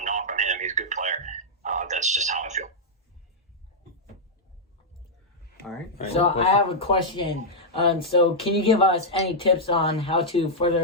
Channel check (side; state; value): both; normal; correlation -0.05